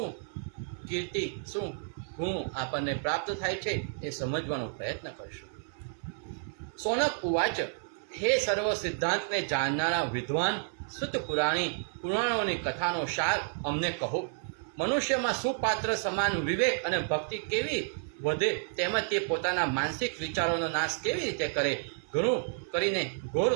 કીર્તિ, શું ગુણ આપણને પ્રાપ્ત થાય છે એ સમજવાનો પ્રયત્ન કરીશું. સોનક ઉવાચ, હે સર્વ સિદ્ધાંતને જાણનારા વિદ્વાન શુદ્ધ પુરાણોની કથાનો સાર અમને કહો. મનુષ્યમાં સુપાત્ર સમાન વિવેક અને ભક્તિ કેવી વધે, તેમજ તે પોતાના માનસિક વિચારોનો નાશ કેવી રીતે કરે. ઘણું કરીને ઘોર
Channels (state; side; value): silent; left; 56 dB below the other